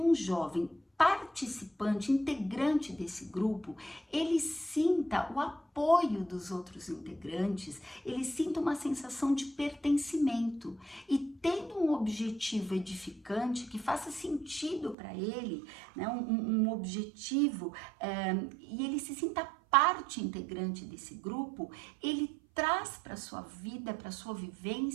jovem participante, integrante desse grupo, ele sinta o apoio dos outros integrantes, ele sinta uma sensação de pertencimento e tendo um objetivo edificante que faça sentido para ele, né, um objetivo, e ele se sinta parte integrante desse grupo, ele traz para a sua vida, para a sua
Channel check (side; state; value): left; drops out; at 15.0 s